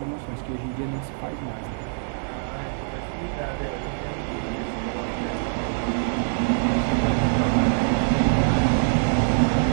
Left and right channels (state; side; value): silent; left; digital silence